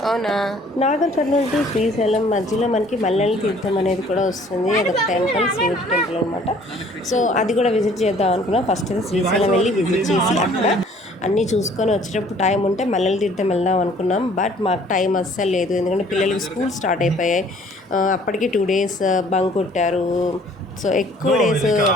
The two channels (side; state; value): both; normal; correlation 0.56